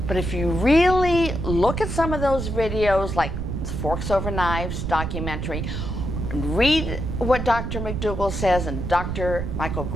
But if you really look at some of those videos, like Forks Over Knives documentary, read what Dr. McDougall says and Dr. Michael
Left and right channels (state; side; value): noise; right; rumble, 3 dB below the sound